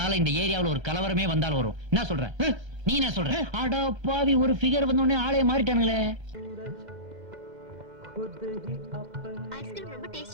இந்த ஏரியாவுல ஒரு கலவரமே வந்தாலும் வரும். என்ன சொல்ற நீ? என்ன சொல்ற? அட பாவி, ஒரு ஃபிகர் வந்த உடனே ஆளே மாறிட்டானுங்களே. ஐஸ்கிரீம் ரொம்ப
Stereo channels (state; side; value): late; left; 1.3 ms